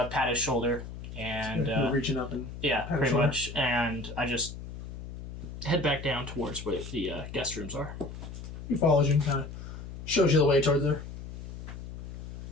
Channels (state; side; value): noise; left; hum, 10 dB below the sound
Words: pat his shoulder, and You're reaching up and yeah, pat his pretty shoulder. much, and I just head back down towards where the guest rooms are. He follows you and kind of shows you the way towards there.